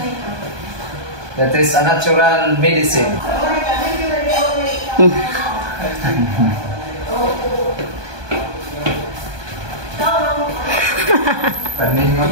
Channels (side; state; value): left; late; 1.2 ms